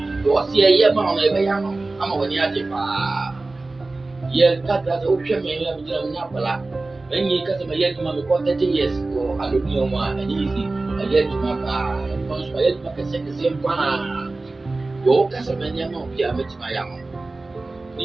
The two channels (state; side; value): quieter; left; 3.3 dB